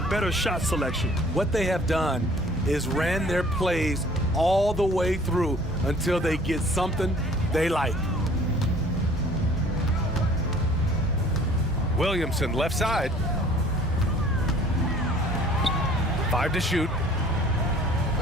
better shot selection. What they have done is ran their plays all the way through until they get something they like. Williamson, left side. 5 to shoot.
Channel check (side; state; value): both; normal; correlation 0.53